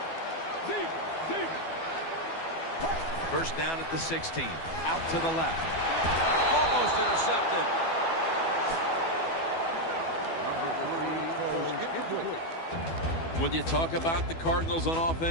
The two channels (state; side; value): late; right; 12 ms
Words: First down at the 16. Out to the left. Almost intercepted. When you talk about the Cardinals on